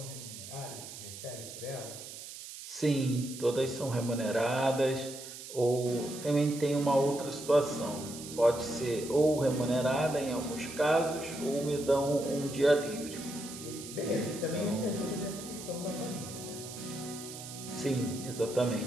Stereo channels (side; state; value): right; noise; hiss, 12 dB below the sound